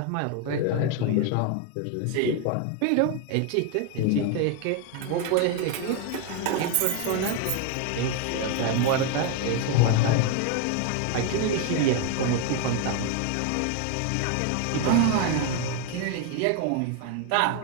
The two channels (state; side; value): different; both; correlation 0.01